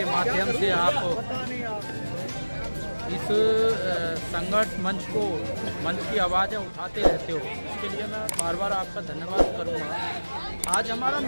माध्यम से आप इस संघर्ष मंच की आवाज़ें उठाते रहते हो। इसके लिए मैं बार बार आपका धन्यवाद करूंगा। आज हमारा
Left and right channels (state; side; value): inverted; both; correlation -1.00